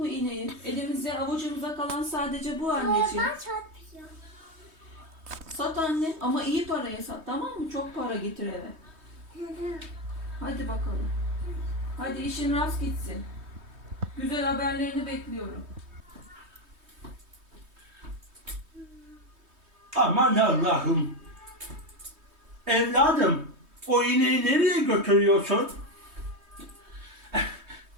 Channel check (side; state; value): left; late; 3.2 ms